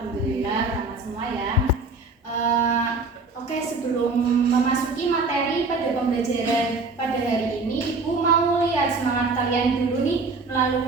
ramah semua ya. Oke, sebelum memasuki materi pada pembelajaran pada hari ini, Ibu mau lihat semangat kalian dulu nih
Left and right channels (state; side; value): quieter; left; 3.6 dB